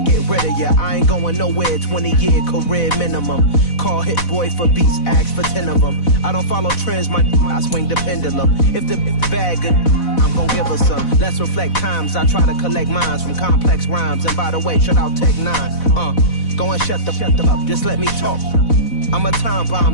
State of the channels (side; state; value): right; late; 4.1 ms